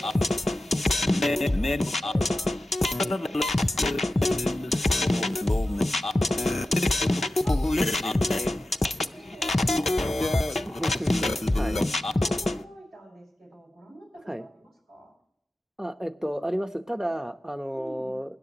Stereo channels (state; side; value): normal; both; correlation 0.93